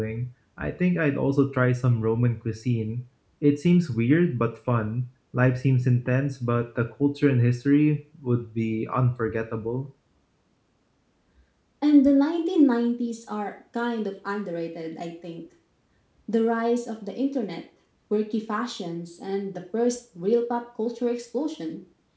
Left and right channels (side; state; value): both; identical; correlation 1.00